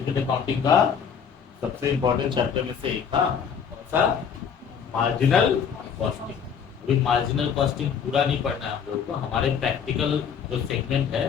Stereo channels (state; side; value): quieter; right; 7.2 dB